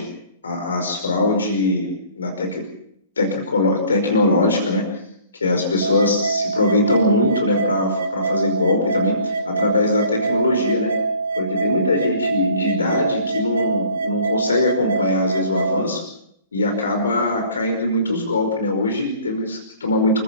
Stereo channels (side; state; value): both; inverted; correlation -0.54